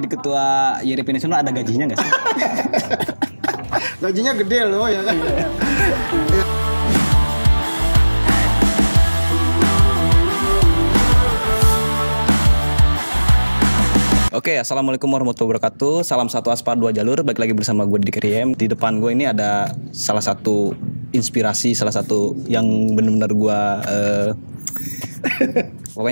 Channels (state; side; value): inverted; both; correlation -1.00